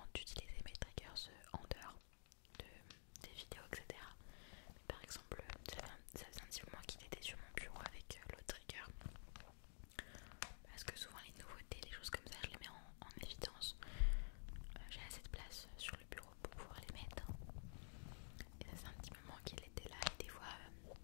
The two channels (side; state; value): right; silent; digital silence